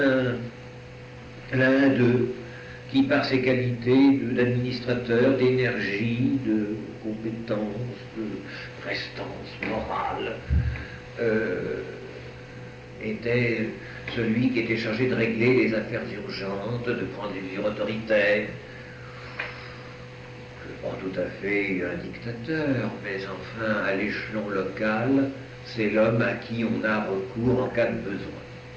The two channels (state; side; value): identical; both; correlation 1.00